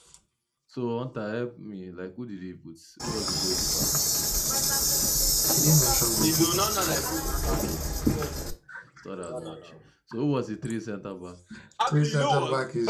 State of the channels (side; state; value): both; identical; correlation 1.00